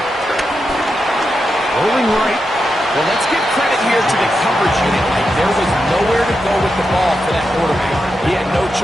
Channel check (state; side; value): normal; both; correlation 0.87